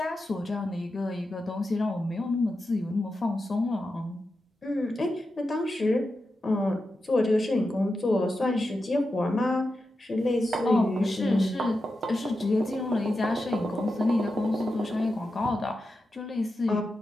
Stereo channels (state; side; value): normal; both; correlation 0.90